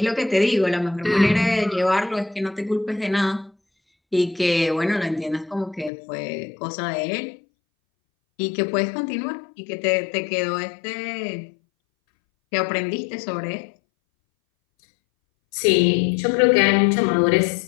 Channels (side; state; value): right; drops out; at 5.9 s